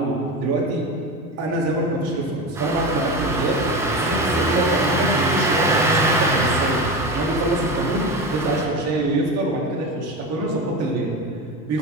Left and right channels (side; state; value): both; normal; correlation 0.23